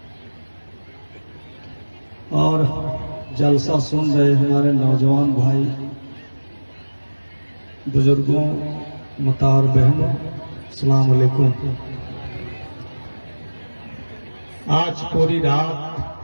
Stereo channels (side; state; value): both; inverted; correlation -1.00